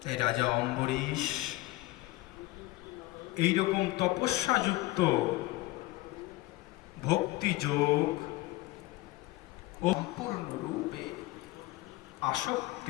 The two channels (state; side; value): quieter; right; 19.2 dB